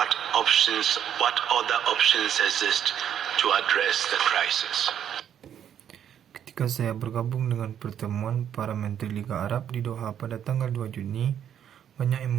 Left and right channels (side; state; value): left; quieter; 9.4 dB